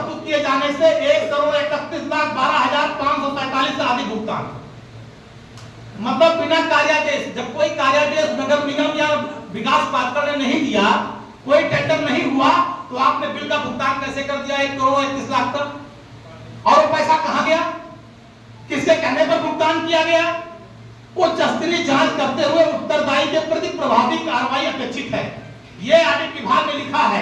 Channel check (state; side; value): identical; both; correlation 1.00